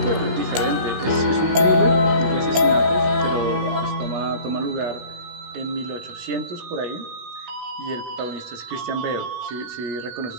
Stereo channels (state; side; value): late; left; 16 ms